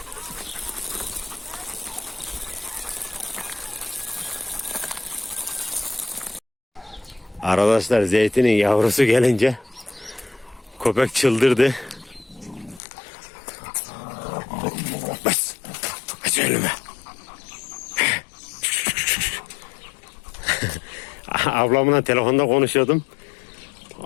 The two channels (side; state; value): right; drops out; at 12.8 s